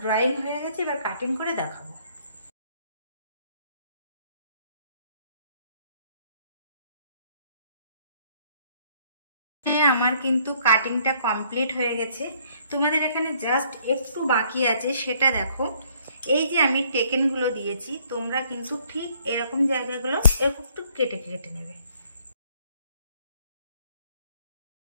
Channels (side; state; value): both; inverted; correlation -0.64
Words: ড্রয়িং হয়ে গেছে, এবার কাটিং করে দেখাবো। আমার কিন্তু কাটিংটা কমপ্লিট হয়ে গেছে। তোমাদের এখানে জাস্ট একটু বাকি আছে, সেটা দেখো। এই যে আমি টেকেনগুলো দিয়েছি, তোমরা কিন্তু ঠিক এরকম জায়গাগুলো এরকম একটু কেটে কেটে নেবে।